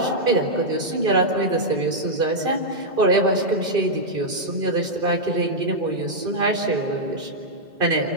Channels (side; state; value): left; late; 2.6 ms